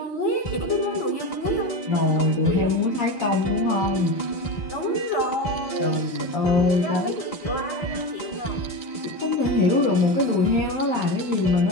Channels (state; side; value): late; right; 4.2 ms